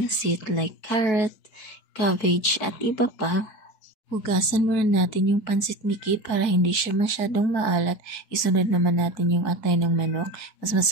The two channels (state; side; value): late; right; 4.6 ms